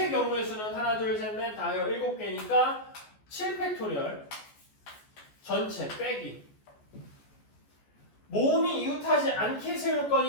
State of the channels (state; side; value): late; right; 14 ms